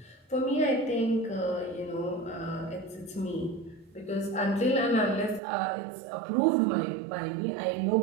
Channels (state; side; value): drops out; left; at 5.4 s